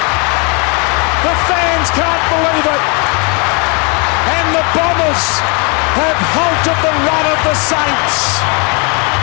The fans can't believe it. And the Bombers have halted the run of the Saints.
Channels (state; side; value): quieter; right; 33.8 dB